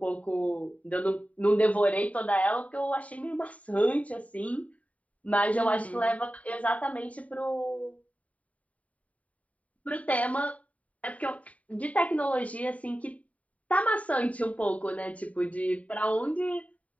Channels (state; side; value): late; right; 0.068 ms